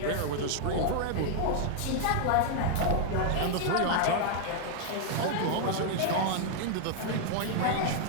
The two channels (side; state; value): both; different; correlation 0.00